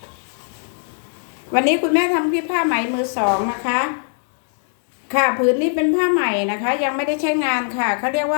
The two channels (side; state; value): right; silent; digital silence